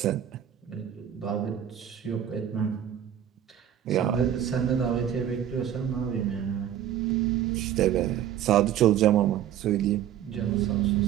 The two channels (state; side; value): quieter; left; 10.3 dB